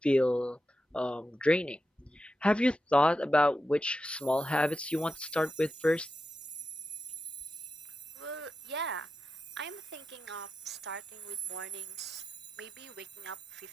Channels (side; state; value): both; normal; correlation 0.89